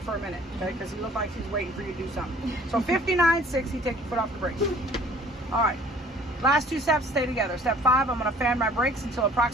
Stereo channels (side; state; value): both; normal; correlation 0.53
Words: for a minute, okay? Because he looked like he's waiting for you to do something. So 59, 60, take your foot off the brake. All right, last 2 steps, stay together. Step 5, I'm going to fan my brakes until